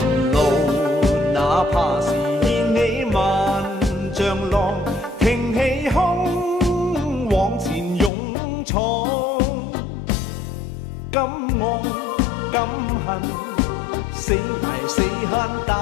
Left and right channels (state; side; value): drops out; right; at 8.1 s